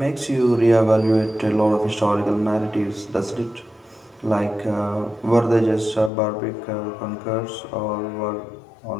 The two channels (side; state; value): right; drops out; at 6.1 s